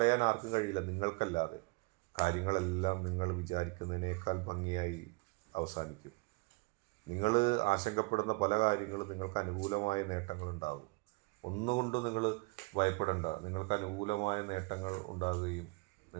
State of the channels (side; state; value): left; quieter; 27.8 dB